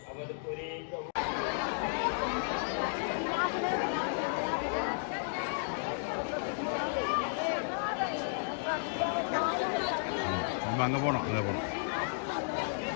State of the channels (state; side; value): silent; right; digital silence